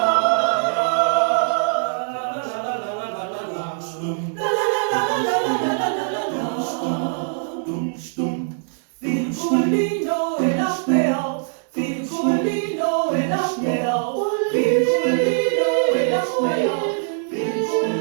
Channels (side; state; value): left; silent; digital silence